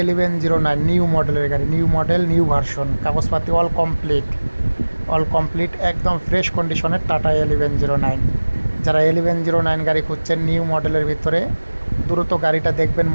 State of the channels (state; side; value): inverted; both; correlation -1.00